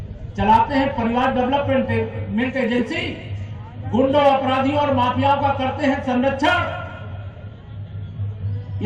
चलाते हैं परिवार डेवलपमेंट एजेंसी, गुंडों, अपराधियों और माफियाओं का करते हैं संरक्षण।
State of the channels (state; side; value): identical; both; correlation 1.00